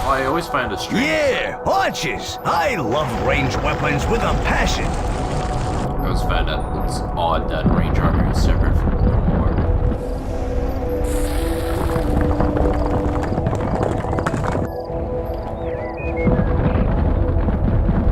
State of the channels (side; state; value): both; identical; correlation 1.00